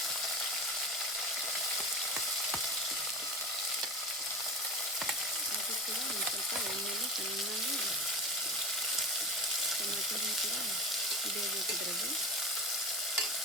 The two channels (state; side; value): normal; both; correlation 0.31